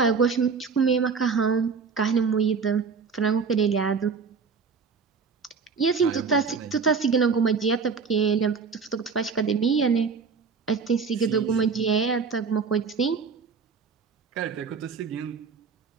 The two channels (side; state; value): left; quieter; 5.4 dB